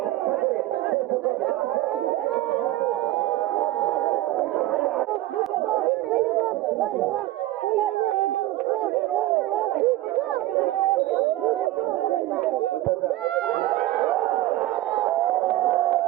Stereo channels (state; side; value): quieter; left; 15.9 dB